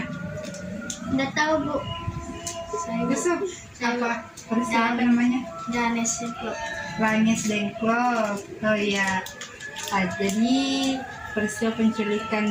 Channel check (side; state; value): both; identical; correlation 1.00